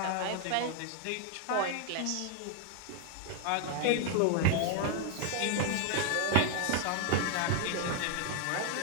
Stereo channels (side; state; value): both; different; correlation 0.00